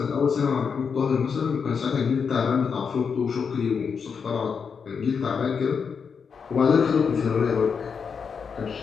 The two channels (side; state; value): right; quieter; 6.1 dB